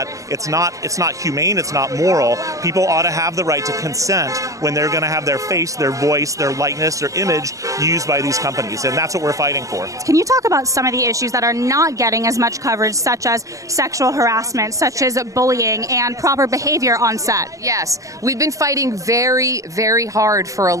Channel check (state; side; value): late; left; 0.16 ms